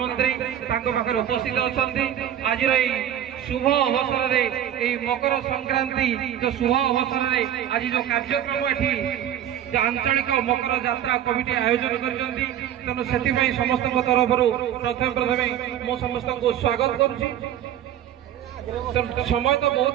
तांको पाखर उपस्थित अछंती। आज शुभ अवसर रे मकर संक्रांति जो शुभ अवसर रे आज जो कार्यक्रम एठी जो आंचलिक मकर यात्रा कमिटी आयोजन करछंती तेणु सेति समस्त तरफ प्रथम मो समस्त को स्वागत करुछि। समय तो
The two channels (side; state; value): left; quieter; 10.8 dB